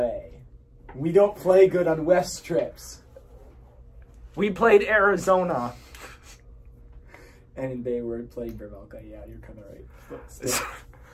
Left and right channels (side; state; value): both; identical; correlation 1.00